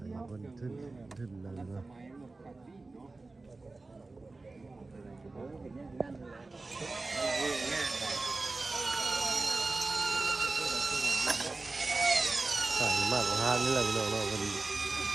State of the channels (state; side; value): quieter; left; 3.4 dB